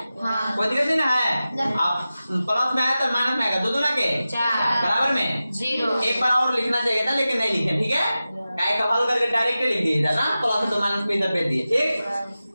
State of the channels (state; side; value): inverted; both; correlation -0.94